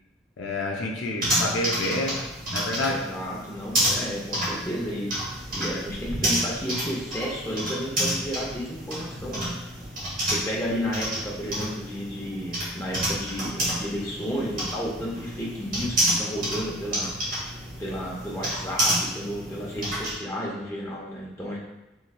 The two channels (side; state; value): both; normal; correlation 0.39